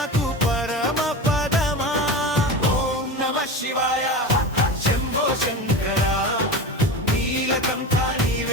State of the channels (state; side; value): normal; both; correlation 0.26